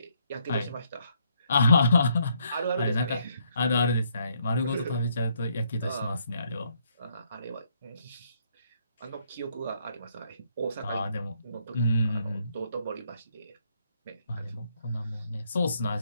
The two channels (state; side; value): inverted; both; correlation -0.71